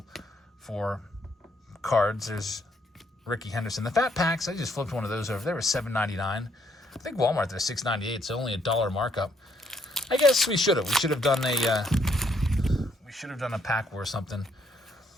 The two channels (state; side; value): normal; both; correlation 0.71